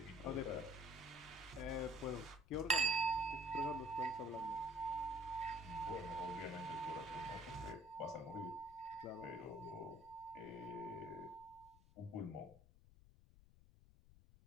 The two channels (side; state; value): left; noise; rumble, 22 dB below the sound